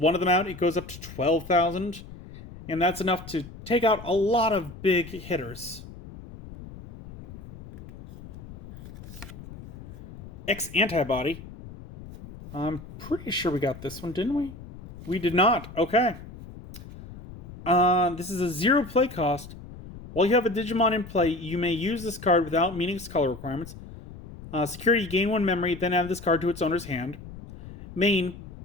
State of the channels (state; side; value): noise; left; rumble, 15 dB below the sound